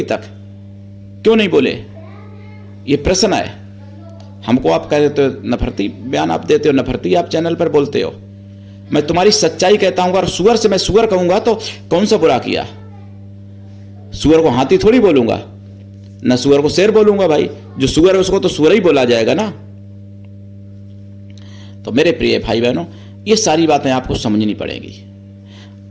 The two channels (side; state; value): both; identical; correlation 1.00